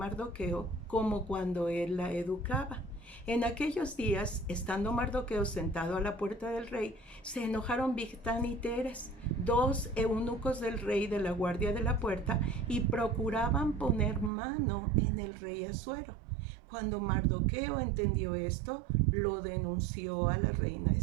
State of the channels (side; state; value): left; drops out; at 14.3 s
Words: como cuando él la educaba. En aquellos días, estando Mardoqueo sentado a la puerta del rey, se enojaron Bigtán y Teres, dos eunucos del rey de la guardia de la puerta, y procuraban poner mano en el rey Asuero. Cuando Mardoqueo entendió esto, lo denunció a la reina